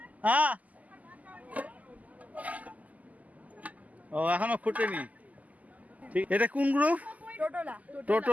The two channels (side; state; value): left; late; 0.076 ms